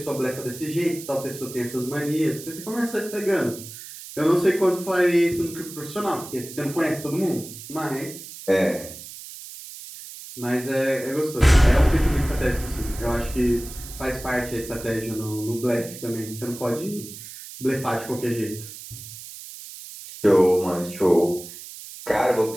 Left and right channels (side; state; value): right; noise; hiss, 13 dB below the sound